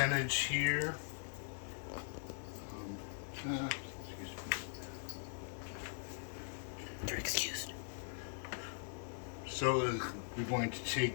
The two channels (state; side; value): silent; right; 50 dB below the other